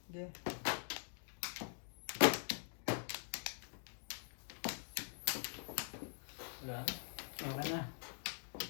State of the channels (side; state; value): right; silent; digital silence